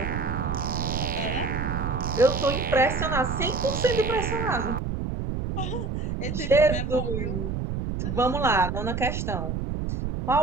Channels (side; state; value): right; noise; rumble, 2 dB below the sound